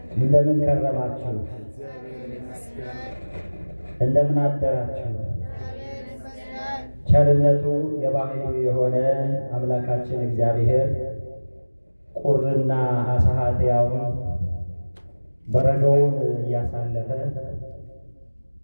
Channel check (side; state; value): both; inverted; correlation -1.00